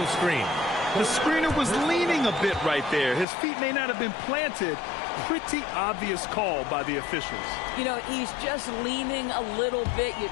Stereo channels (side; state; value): right; drops out; at 3.2 s